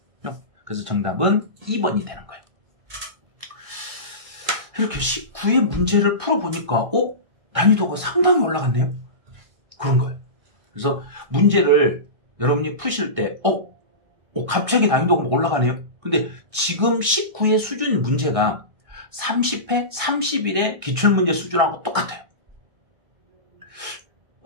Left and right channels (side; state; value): left; late; 1.6 ms